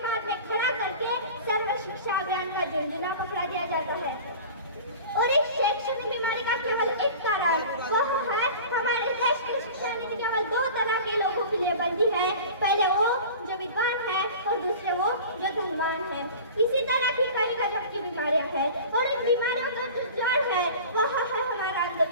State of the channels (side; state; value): both; inverted; correlation -0.38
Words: में खड़ा करके सर्व शिक्षा अभियान का झुंझुना पकड़ा दिया जाता है। और इस शैक्षणिक बीमारी का केवल एक कारण वह है हमारे देश की शिक्षा नीति केवल दो तरह के लोगों के लिए बनती है, पहले वो जो विद्वान है और दूसरे वो जो धनवान है। इसी तरह की कई गजब की बीमारियां हैं, और इन बीमारियों का जो जड़ है वह है हमारा